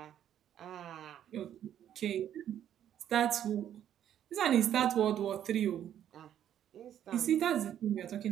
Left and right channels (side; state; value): left; quieter; 10.5 dB